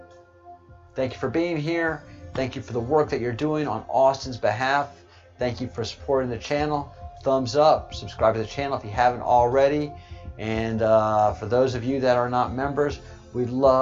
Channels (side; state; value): both; identical; correlation 1.00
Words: Thank you for being here. Thank you for the work that you're doing on Austin's behalf. Thank you for supporting the channel. Thumbs up. Subscribe to the channel if you haven't already. And for those of you that are not members, we'd